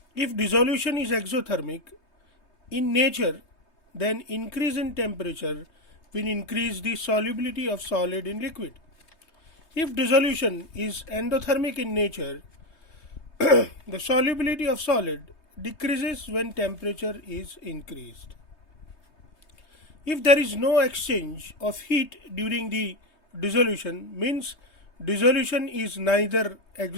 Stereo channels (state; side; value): late; right; 3.2 ms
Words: if dissolution is exothermic in nature, then increase in temperature will increase the solubility of solid in liquid. If dissolution is endothermic in nature, the solubility of solid decreases when temperature is increased. If there is no exchange of heat during the dissolution, means dissolution is neither